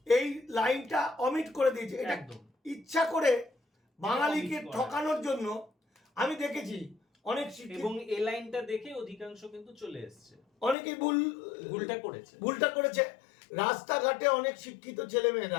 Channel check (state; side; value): drops out; right; at 10.8 s